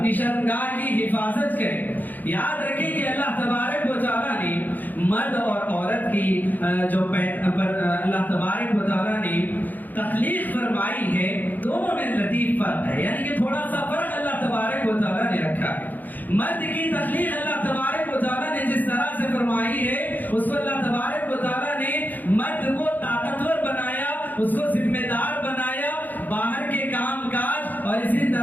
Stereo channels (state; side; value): late; right; 0.084 ms